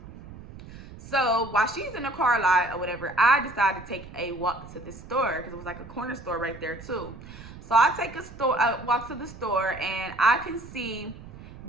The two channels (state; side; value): noise; right; rumble, 16 dB below the sound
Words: So while she's in the car lot or whatever, I decided to take a walk to the store, because it was like a corner store right there too. So I take a walk to the store, and I can see